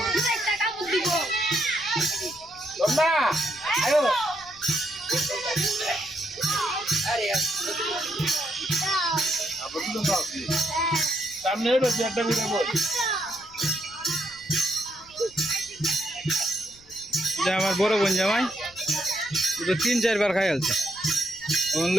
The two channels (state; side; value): noise; left; rumble, 26 dB below the sound